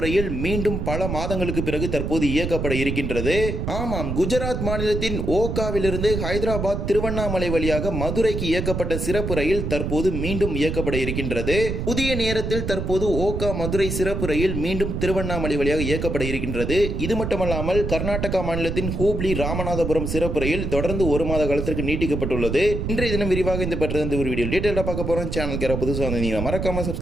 ரயில் மீண்டும் பல மாதங்களுக்கு பிறகு தற்போது இயக்கப்பட இருக்கின்றது. ஆமாம், குஜராத் மாநிலத்தின் ஓகாவிலிருந்து ஹைதராபாத் திருவண்ணாமலை வழியாக மதுரைக்கு இயக்கப்பட்ட சிறப்பு ரயில் தற்போது மீண்டும் இயக்கப்பட இருக்கின்றது. புதிய நேரத்தில் தற்போது ஓகா மதுரை சிறப்பு ரயில் மீண்டும் திருவண்ணாமலை வழியாக இயக்கப்பட இருக்கின்றது. இது மட்டுமல்லாமல் கர்நாடகா மாநிலத்தின் ஹூப்ளி ராமநாதபுரம் சிறப்பு ரயில் தொடர்ந்து ஒரு மாத காலத்திற்கு நீட்டிக்கப்பட்டுள்ளது. இன்றைய தினம் விரிவாக இந்த பற்றி ஒரு வீடியோ டீடைலா பார்க்க போறோம். சேனலுக்கு புதுசாக வந்தீங்கன்னா மறக்காம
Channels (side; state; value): right; noise; rumble, 3 dB below the sound